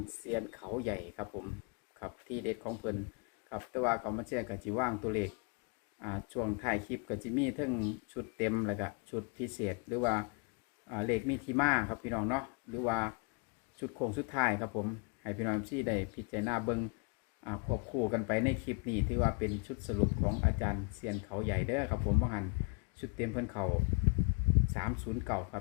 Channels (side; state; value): right; quieter; 36.2 dB